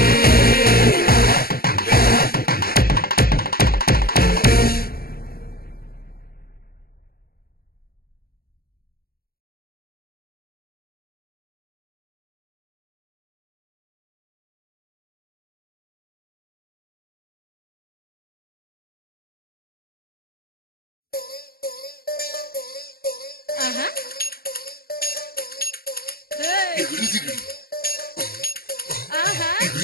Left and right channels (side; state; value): right; late; 0.44 ms